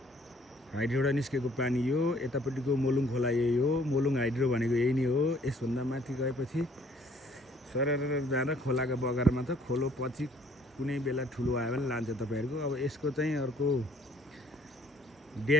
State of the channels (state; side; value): normal; both; correlation 0.60